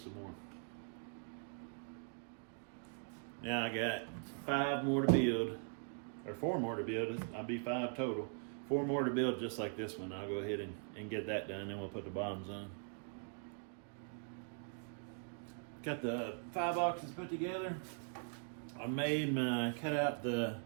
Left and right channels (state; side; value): silent; left; 50 dB below the other